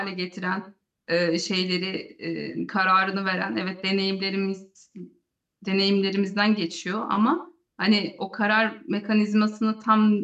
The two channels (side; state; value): both; identical; correlation 1.00